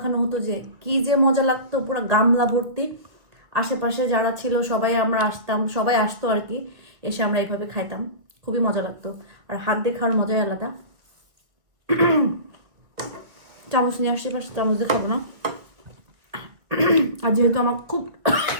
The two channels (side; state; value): left; late; 2.2 ms